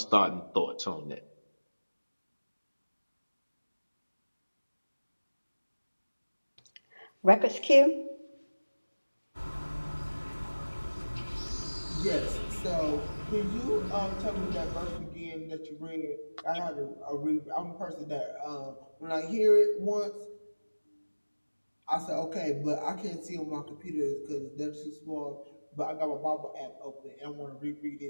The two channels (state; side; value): inverted; both; correlation -1.00